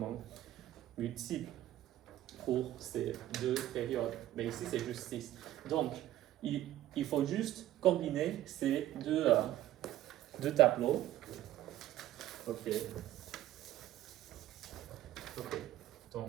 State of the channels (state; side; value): quieter; left; 13.8 dB